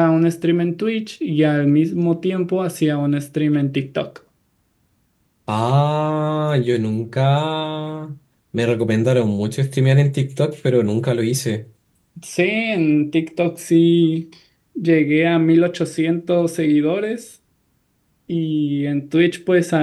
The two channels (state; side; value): identical; both; correlation 1.00